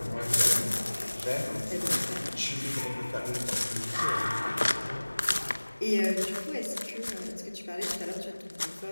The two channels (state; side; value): inverted; both; correlation -1.00